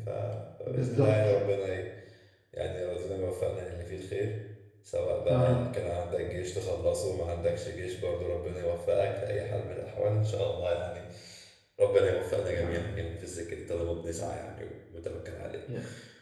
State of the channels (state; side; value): identical; both; correlation 1.00